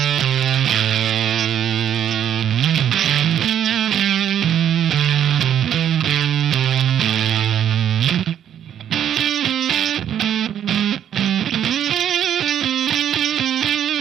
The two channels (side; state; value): left; quieter; 9.9 dB